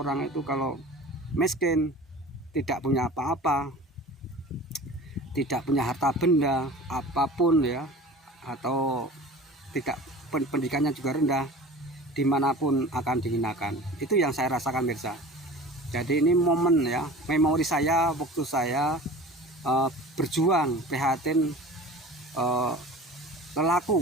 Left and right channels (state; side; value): normal; both; correlation 0.39